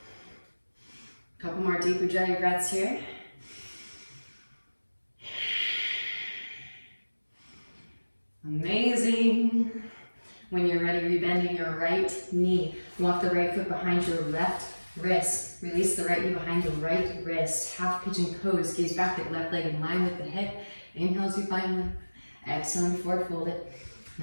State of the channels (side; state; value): both; inverted; correlation -1.00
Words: Couple more deep ujjayi breaths here. Amazing. When you're ready, rebending your right knee. Walk the right foot behind your left wrist. Release the right knee behind the right wrist. Half pigeon pose. Gaze back at left leg in line with the hip. Inhale as you find lift. Exhale, forward fold it.